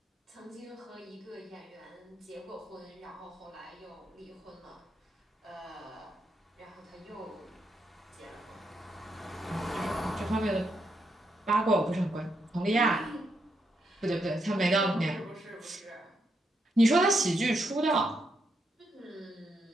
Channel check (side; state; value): both; normal; correlation 0.80